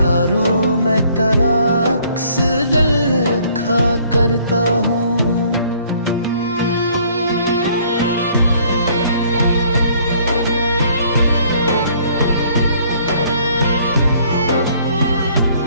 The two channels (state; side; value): inverted; both; correlation -0.60